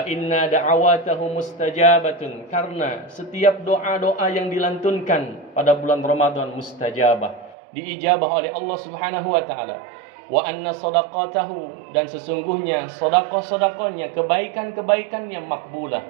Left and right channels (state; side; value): drops out; left; at 7.6 s